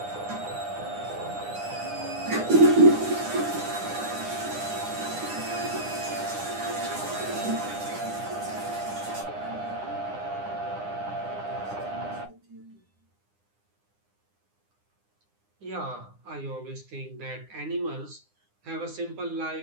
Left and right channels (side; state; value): left; late; 9.8 ms